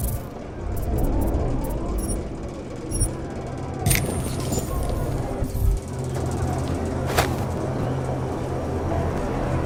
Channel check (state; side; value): identical; both; correlation 1.00